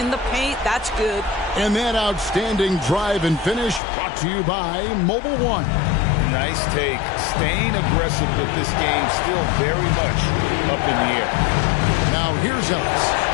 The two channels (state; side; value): drops out; right; at 3.8 s